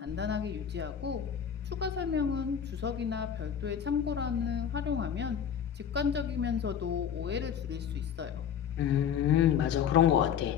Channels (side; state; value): right; quieter; 8.3 dB